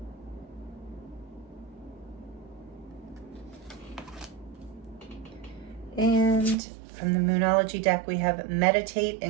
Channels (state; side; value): drops out; left; at 6.6 s